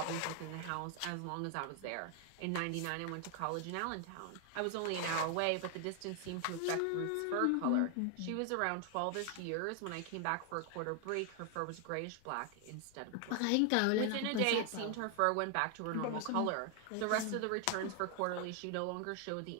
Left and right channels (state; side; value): different; both; correlation 0.00